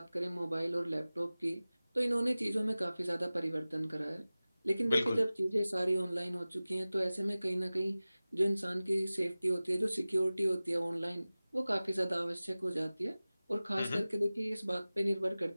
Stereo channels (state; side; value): inverted; both; correlation -0.97